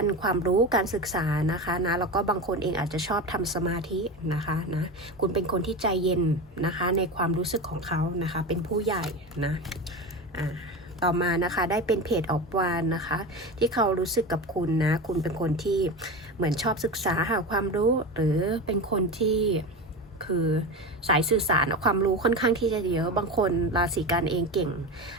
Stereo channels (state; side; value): normal; both; correlation 0.24